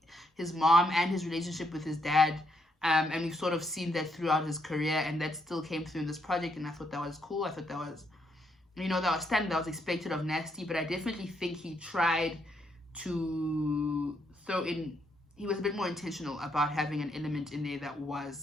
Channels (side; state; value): both; normal; correlation 0.76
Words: his mom and his relationship with his dad. And we've sort of seen that throughout his career, and that still came through in this project, and I thought that was cool. I thought that was, that was standard, that was expected of Nasty, but I definitely think he tried to throw in, he was a bit more intentional about having an element in there that